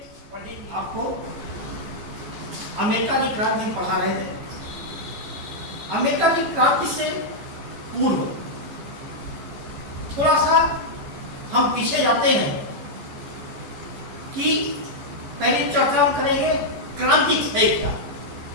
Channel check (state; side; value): late; left; 14 ms